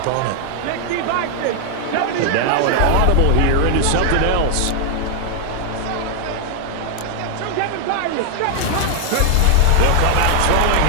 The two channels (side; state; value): both; different; correlation 0.00